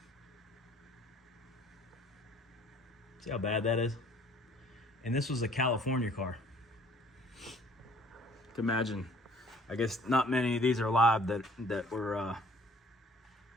See how bad that is? And this was a California car. You can imagine, I guess not many of these are live that were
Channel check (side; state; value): both; normal; correlation 0.56